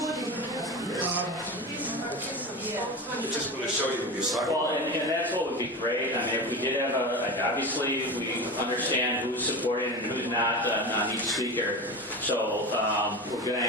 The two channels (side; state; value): both; normal; correlation 0.26